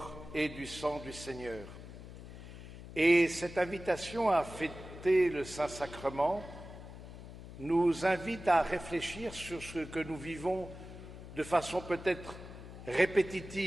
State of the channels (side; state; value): left; noise; hum, 13 dB below the sound